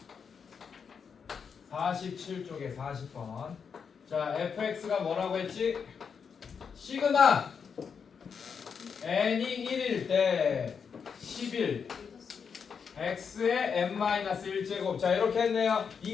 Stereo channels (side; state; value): right; quieter; 6.4 dB